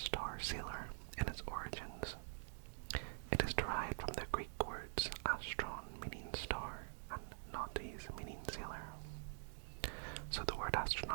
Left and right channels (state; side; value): silent; left; digital silence